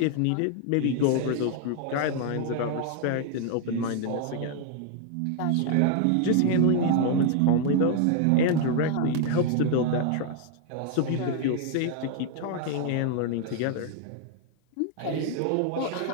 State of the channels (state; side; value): different; both; correlation 0.00